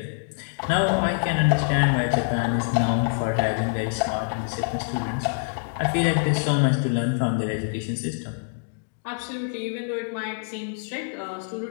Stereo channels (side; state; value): right; silent; 62 dB below the other